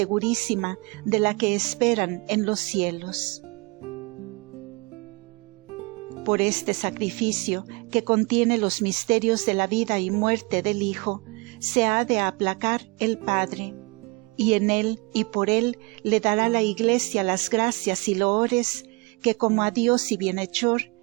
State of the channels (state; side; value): quieter; left; 28.4 dB